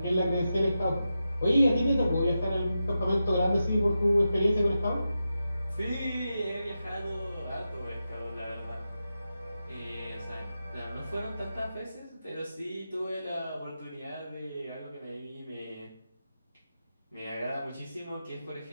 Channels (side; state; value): both; inverted; correlation -0.90